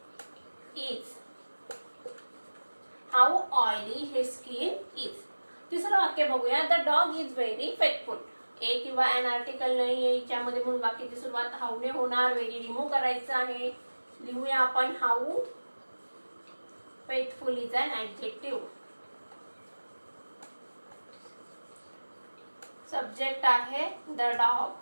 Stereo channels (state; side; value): inverted; both; correlation -1.00